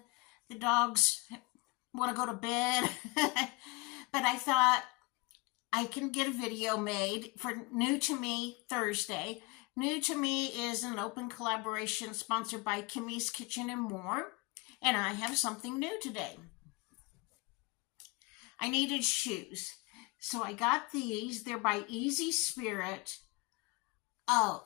The dogs want to go to bed. But I thought I can get a video made for New to Me Thursday. New to Me is an open collaboration sponsored by Kimmy's Kitchen and More. And I have something new today. I needed shoes. So I got these. They're by Easy Spirit. Oh,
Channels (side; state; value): right; quieter; 26.1 dB